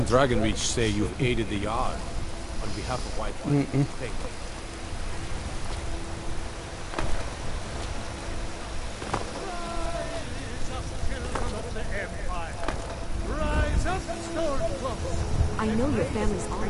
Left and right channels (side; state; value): both; identical; correlation 1.00